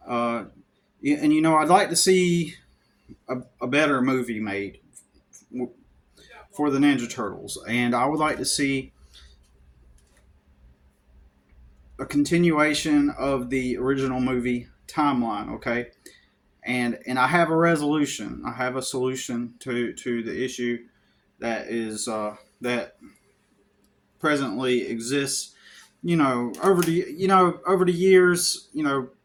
Uh, and I'd like to see a better movie made for the Ninja Turtles, and I would like to see a continuation of the original movie timeline. Okay, and I have a resolution. I have a solution to the issue that presently exists. Over the years,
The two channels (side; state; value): both; identical; correlation 1.00